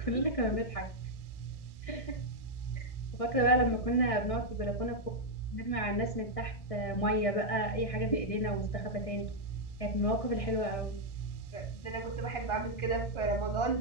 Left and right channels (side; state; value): right; late; 1.6 ms